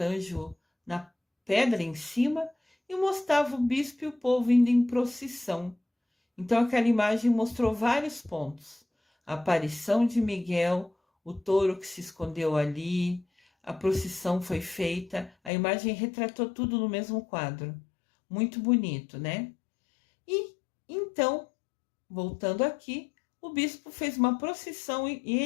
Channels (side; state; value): right; drops out; at 15.5 s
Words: na pedra em cima, e mostrava o bispo e o povo indo em procissão. Então aquela imagem mostrou vários pontos. A aparição de Miguel, o touro que se escondeu ali, a procissão foi feita, a imagem retratou tudo no mesmo quadro. Muito bonito, né? E então, voltando aqui, o bispo fez uma procissão e